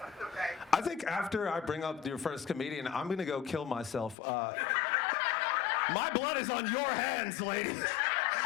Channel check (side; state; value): right; drops out; at 4.2 s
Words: Okay. I think after I bring up your first comedian, I'm going to go kill myself. My blood is on your hands, lady.